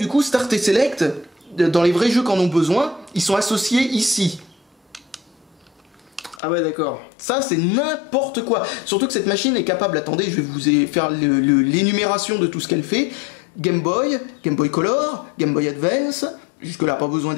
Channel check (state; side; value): drops out; right; at 6.4 s